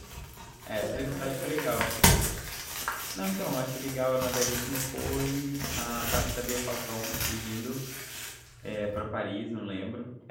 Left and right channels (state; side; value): identical; both; correlation 1.00